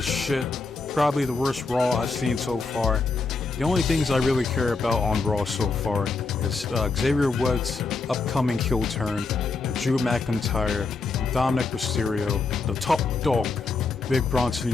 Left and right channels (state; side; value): quieter; right; 4.1 dB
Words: shit. Probably the worst Raw I've seen so far. The only things I really care about on Raw so far is Xavier Woods' upcoming heel turn, Drew McIntyre, Dominic Mysterio, the top dog, Big